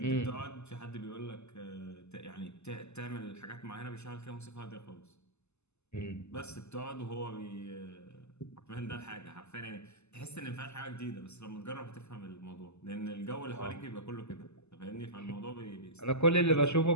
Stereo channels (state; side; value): late; right; 0.81 ms